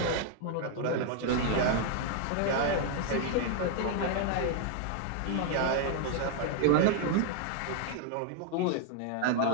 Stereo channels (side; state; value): both; different; correlation 0.00